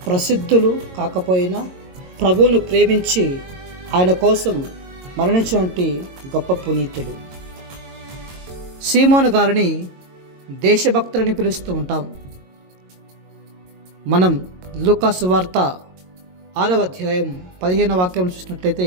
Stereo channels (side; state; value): left; late; 22 ms